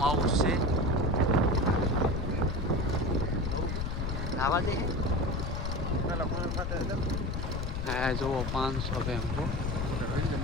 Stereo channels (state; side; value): noise; left; rumble, 2 dB below the sound